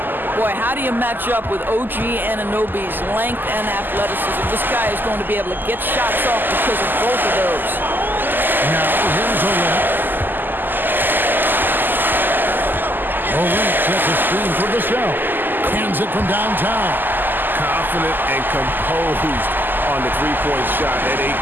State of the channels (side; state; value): left; late; 0.090 ms